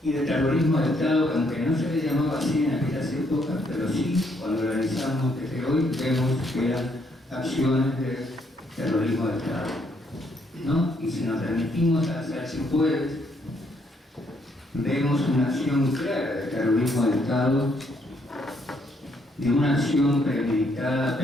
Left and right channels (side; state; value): both; normal; correlation 0.72